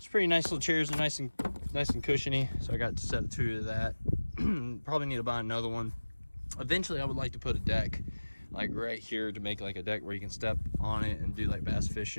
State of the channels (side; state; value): both; inverted; correlation -1.00